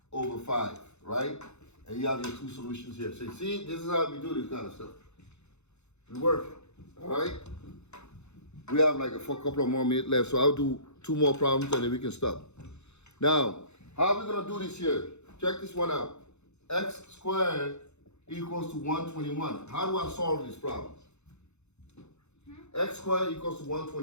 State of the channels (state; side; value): late; right; 0.81 ms